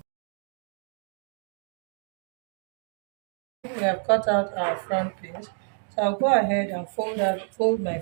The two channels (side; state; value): left; silent; 59 dB below the other